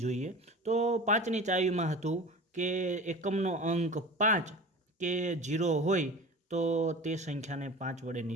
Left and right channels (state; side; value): normal; both; correlation 0.35